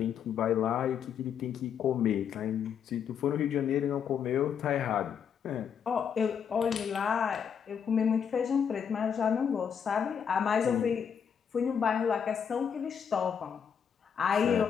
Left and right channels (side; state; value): right; quieter; 7.5 dB